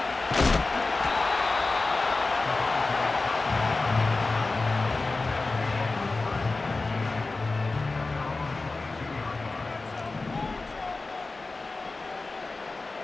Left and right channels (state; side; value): quieter; right; 3.5 dB